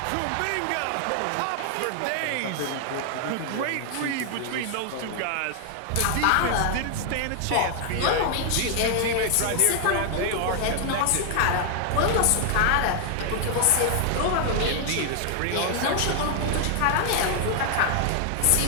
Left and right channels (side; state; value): both; different; correlation 0.00